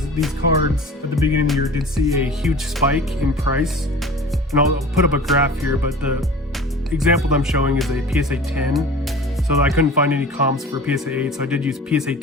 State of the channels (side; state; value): both; normal; correlation 0.41